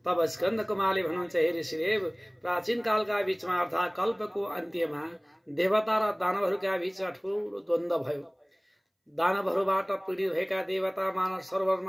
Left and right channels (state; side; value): identical; both; correlation 1.00